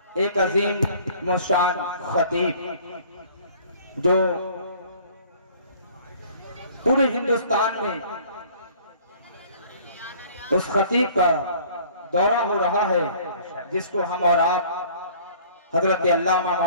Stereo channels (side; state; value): both; inverted; correlation -0.52